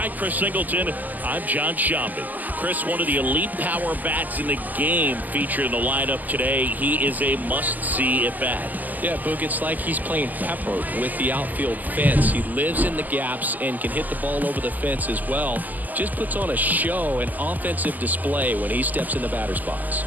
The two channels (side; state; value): left; late; 0.083 ms